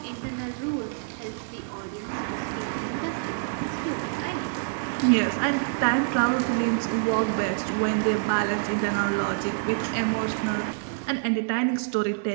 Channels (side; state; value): left; silent; 57 dB below the other